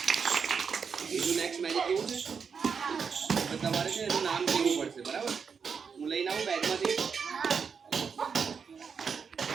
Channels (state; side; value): quieter; left; 6.1 dB